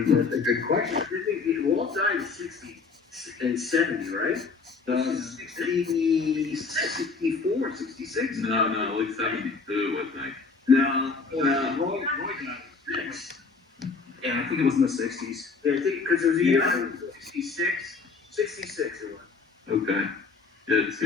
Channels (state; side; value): quieter; right; 4.6 dB